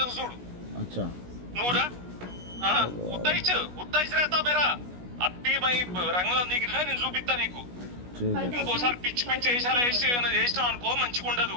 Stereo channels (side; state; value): left; late; 16 ms